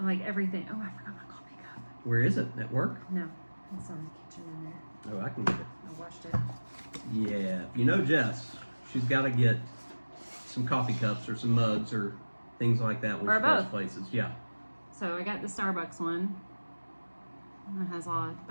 like everything. Oh, I forgot my coffee cup. Where is it? At work? No, it's on the kitchen in there. Oh, I can get it. I washed it. Yeah. You know Jess, she's got to get some coffee cups or some mugs or things like that when Or she goes both. places. Yeah. So I got the Starbucks one. It has a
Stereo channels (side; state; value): both; inverted; correlation -1.00